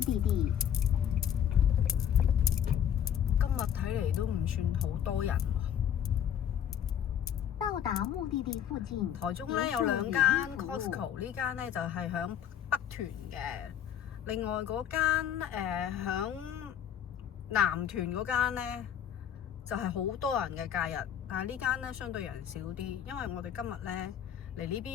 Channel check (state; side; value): quieter; right; 9.4 dB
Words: 地。今日睇嚟都唔算好多人喎。到達目的地附近。台中咧有兩間 Costco， 呢間咧就係響北屯嘅，另外嗰間響南屯嗰間咧就係好多人嘅假日，但係呢間咧相對人少啲，因為我哋今日咧嚟呢